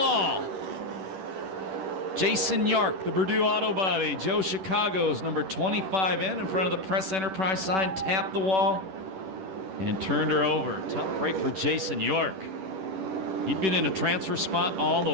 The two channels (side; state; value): left; late; 10 ms